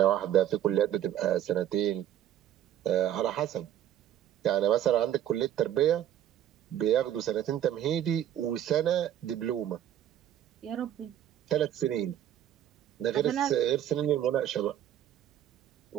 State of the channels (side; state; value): left; quieter; 11.2 dB